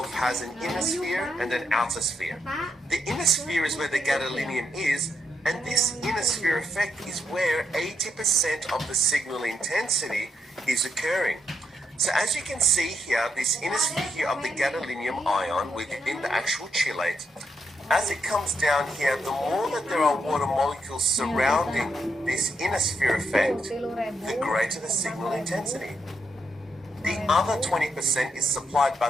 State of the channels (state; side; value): normal; both; correlation 0.79